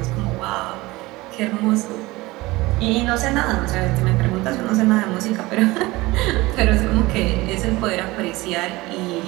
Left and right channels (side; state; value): left; quieter; 20.6 dB